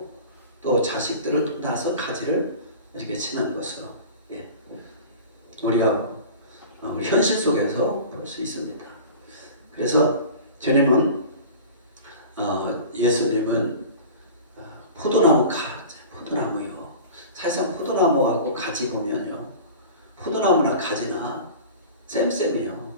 또 자식들을 또 낳아서 가지를 이렇게 치는 것으로 우리가 현실 속에서 볼 수 있습니다. 그래서 주님은 예수님은 포도나무 가지, 포도나무요. 사실상 포도나무하고 가지 보면요, 포도나무나 가지나 쌤쌤이요.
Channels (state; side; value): inverted; both; correlation -0.38